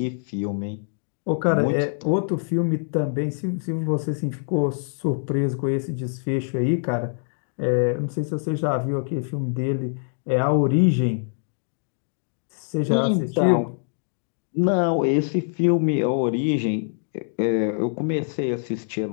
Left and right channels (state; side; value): silent; right; digital silence